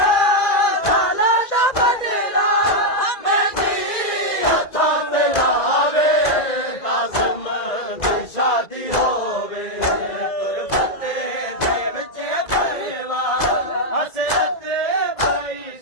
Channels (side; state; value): right; late; 2.0 ms